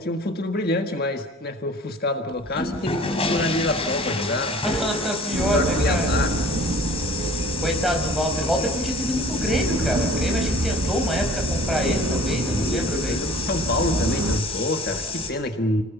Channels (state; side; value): normal; both; correlation 0.48